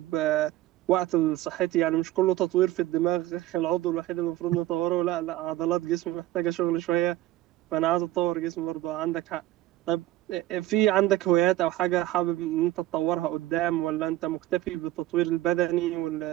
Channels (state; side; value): quieter; left; 15.3 dB